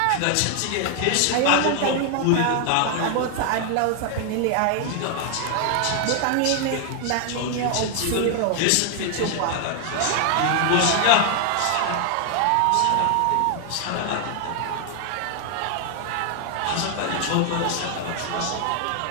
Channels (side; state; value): both; different; correlation 0.00